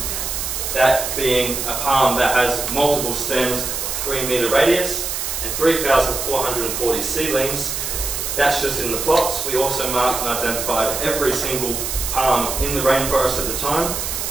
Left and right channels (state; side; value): noise; right; hiss, 3 dB below the sound